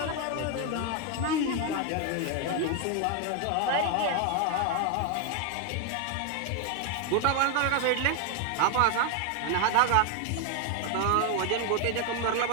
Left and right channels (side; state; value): both; different; correlation 0.01